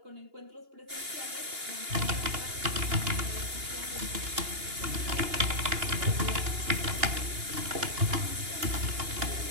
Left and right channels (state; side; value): late; left; 2.8 ms